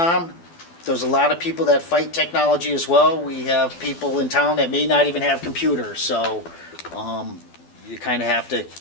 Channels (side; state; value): right; late; 12 ms